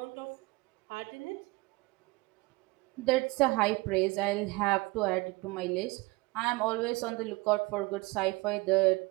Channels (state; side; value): quieter; left; 23.5 dB